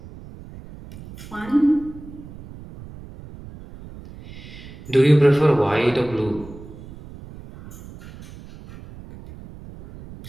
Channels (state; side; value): noise; right; rumble, 17 dB below the sound